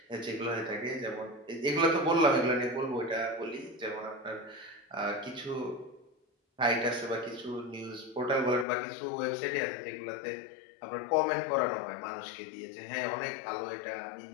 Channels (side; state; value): right; drops out; at 8.7 s